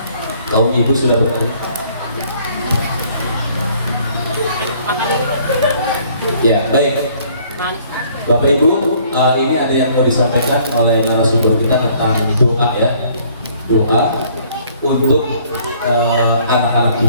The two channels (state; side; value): inverted; both; correlation -0.59